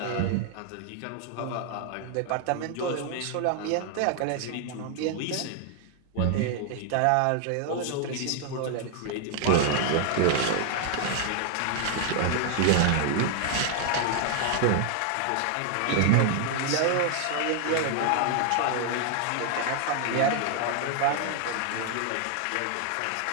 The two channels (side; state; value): both; different; correlation 0.00